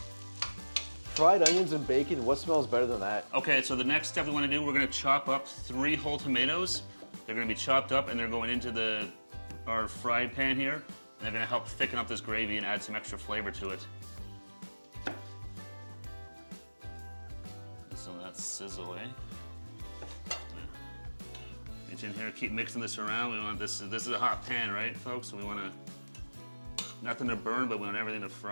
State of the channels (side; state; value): both; inverted; correlation -1.00